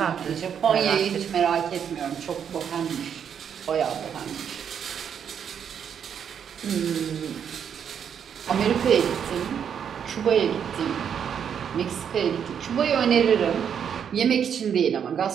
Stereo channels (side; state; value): left; quieter; 8.0 dB